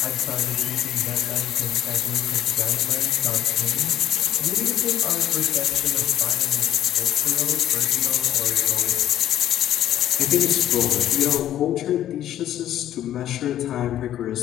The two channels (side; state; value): right; quieter; 11.8 dB